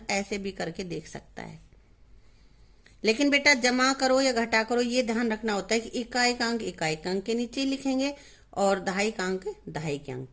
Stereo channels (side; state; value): both; identical; correlation 1.00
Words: ऐसे भी करके देख सकता है, लेकिन बेटा जमा करो या घटा करो ये ध्यान रखना होता है कि इकाई का अंक इकाई के अंक के नीचे लिखेंगे और दहाई का अंक दहाई के अंक